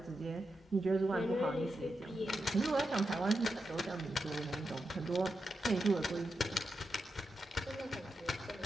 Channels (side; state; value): both; normal; correlation 0.88